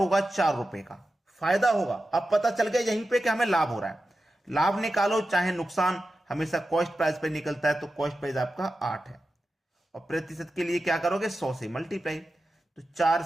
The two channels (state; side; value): normal; both; correlation 0.92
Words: 4 रुपए का फायदा होगा। अब पता चल गया यहीं पे कि हमें लाभ हो रहा है। लाभ निकालो चाहे नुकसान, हमेशा कॉस्ट प्राइस पे निकलता है, तो कॉस्ट प्राइस आपका 8 है। और प्रतिशत के लिए क्या करोगे, 100 से मल्टीप्लाई। तो 4